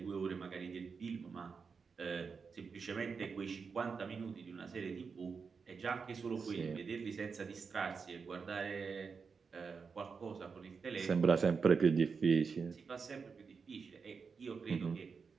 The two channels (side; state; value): left; quieter; 5.4 dB